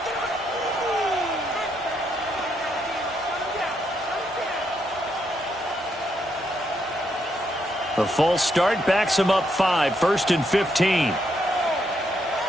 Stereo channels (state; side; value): normal; both; correlation 0.78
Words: The false start backs him up 5, 1st and 15.